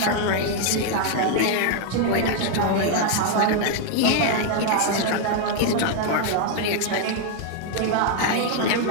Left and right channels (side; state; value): both; different; correlation 0.00